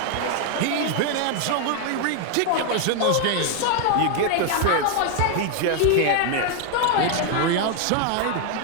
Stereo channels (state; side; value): different; both; correlation 0.00